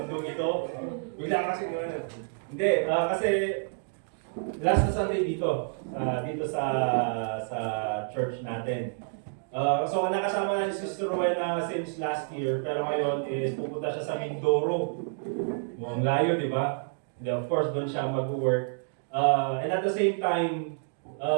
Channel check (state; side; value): silent; left; digital silence